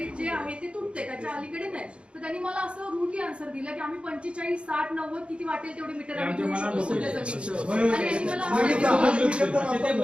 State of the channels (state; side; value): late; left; 0.058 ms